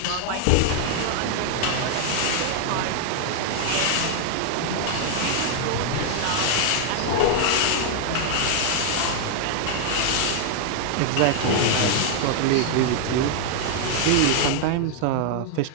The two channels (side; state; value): both; different; correlation 0.00